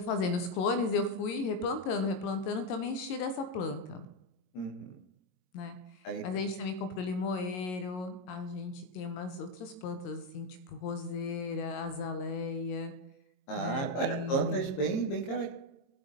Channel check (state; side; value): late; right; 22 ms